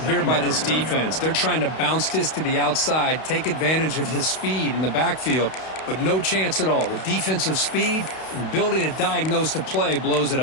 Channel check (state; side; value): late; right; 32 ms